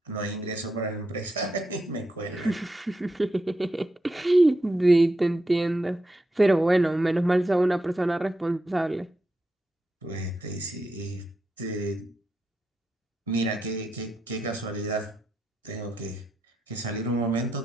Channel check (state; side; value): normal; both; correlation 0.85